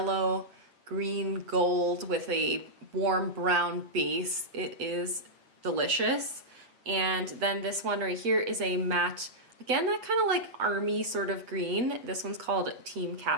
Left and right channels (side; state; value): left; late; 8.0 ms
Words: green, gold with a warm brown base. It is delicious. And then this one right here is a matte, again, that kind of like army sort of green. This one's called Team